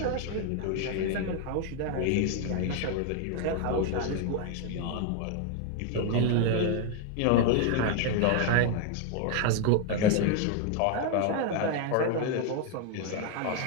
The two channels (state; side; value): different; both; correlation 0.01